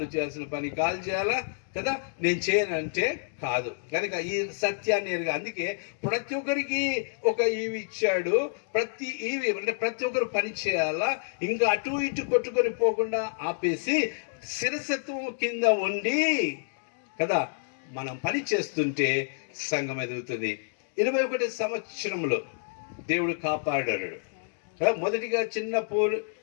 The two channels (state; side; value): silent; right; digital silence